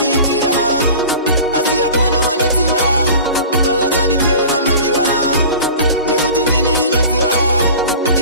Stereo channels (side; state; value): both; inverted; correlation -0.39